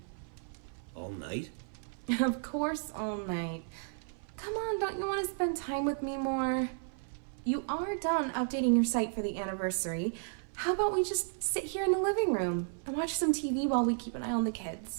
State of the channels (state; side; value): silent; left; 55 dB below the other